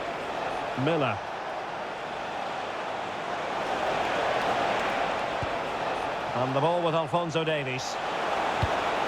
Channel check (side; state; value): both; identical; correlation 1.00